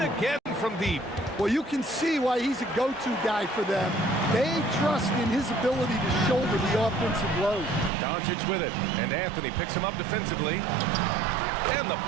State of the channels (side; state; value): left; drops out; at 7.9 s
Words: from deep. Well, you can see why he's a go-to guy for them. They trust in his ability to shoulder the offensive load. Doncic with it, and Anthony picks him up defensively. And the